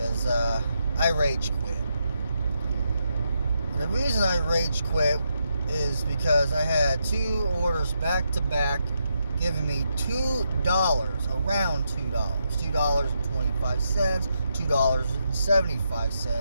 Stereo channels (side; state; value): both; inverted; correlation -0.82